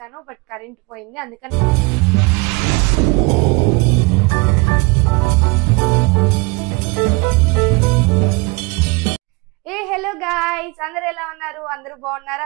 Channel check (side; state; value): left; quieter; 26.7 dB